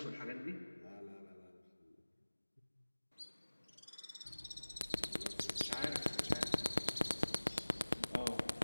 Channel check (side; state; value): both; inverted; correlation -1.00